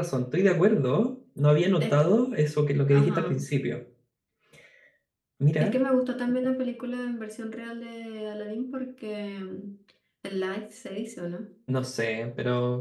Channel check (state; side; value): identical; both; correlation 1.00